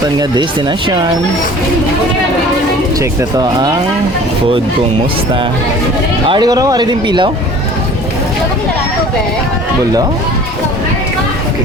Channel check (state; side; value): normal; both; correlation 0.46